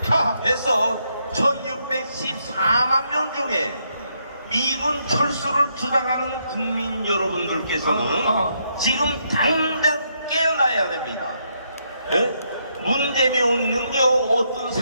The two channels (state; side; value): inverted; both; correlation -0.76